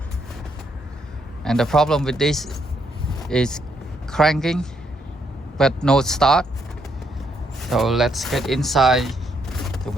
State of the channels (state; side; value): normal; both; correlation 0.74